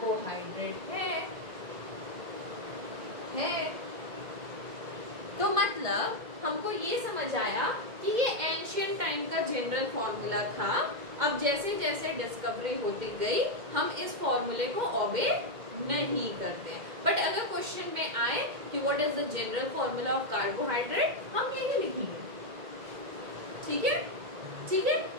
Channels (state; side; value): late; left; 2.1 ms